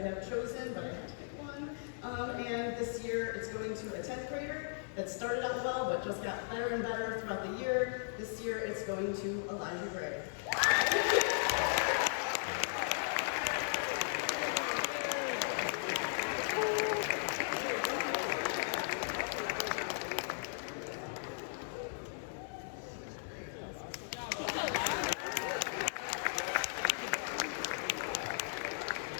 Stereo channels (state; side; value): silent; right; 53 dB below the other